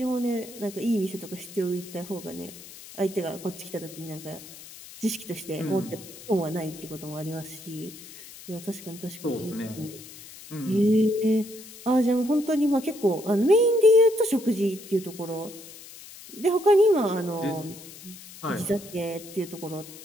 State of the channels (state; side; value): noise; left; hiss, 17 dB below the sound